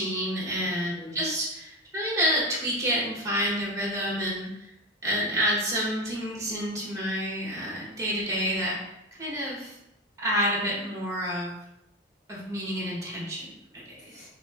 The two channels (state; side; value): normal; both; correlation 0.17